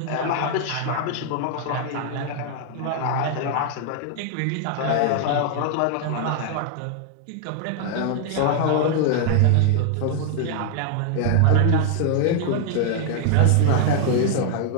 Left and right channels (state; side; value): different; both; correlation 0.00